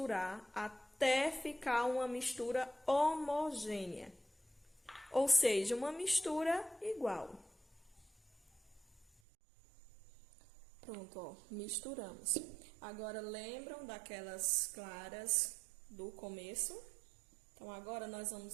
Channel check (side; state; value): left; drops out; at 9.1 s